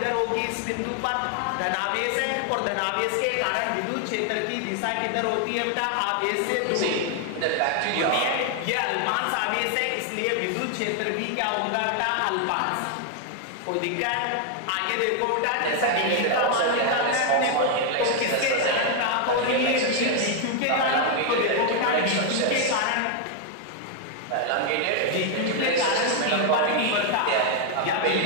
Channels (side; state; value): both; different; correlation 0.00